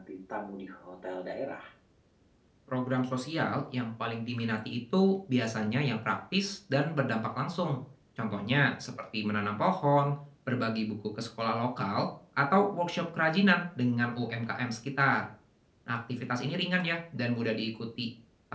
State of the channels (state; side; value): identical; both; correlation 1.00